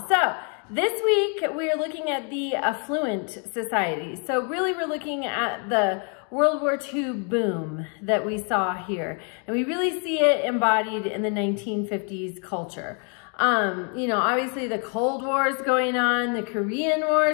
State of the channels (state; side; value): quieter; right; 39.8 dB